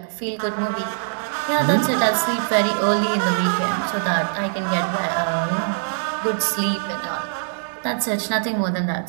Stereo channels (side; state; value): left; silent; digital silence